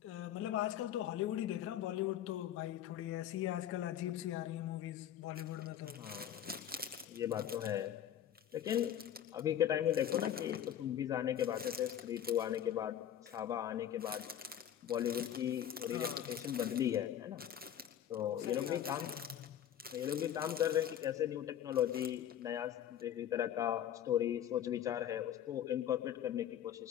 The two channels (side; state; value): right; quieter; 10.4 dB